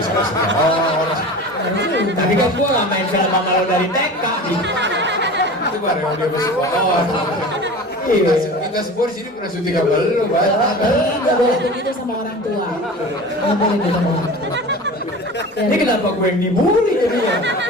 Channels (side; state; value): both; normal; correlation 0.35